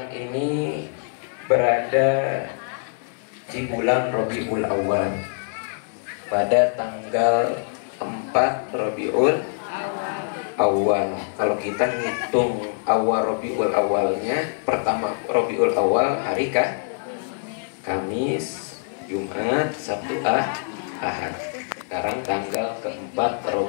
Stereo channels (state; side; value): silent; right; digital silence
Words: ini berada di bulan Rabiul Awal pada tanggal 4 Rabiul Awal. Kalau kita ngitung awal Rabiul Awalnya, pertama Rabiul Awal hari Kamis, Jumat, Sabtu, Ahad. Sekarang tanggal keempat